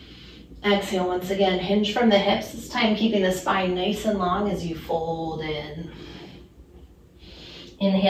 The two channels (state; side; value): identical; both; correlation 1.00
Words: Exhale, once again, hinge from the hips. This time keeping the spine nice and long as you fold in.